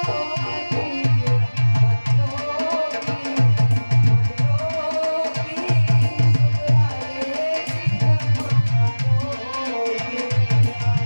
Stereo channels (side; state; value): both; inverted; correlation -1.00